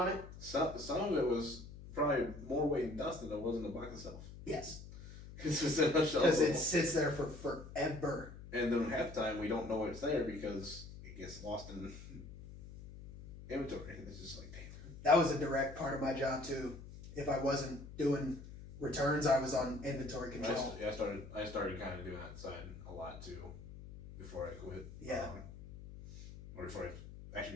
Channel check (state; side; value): noise; left; hum, 14 dB below the sound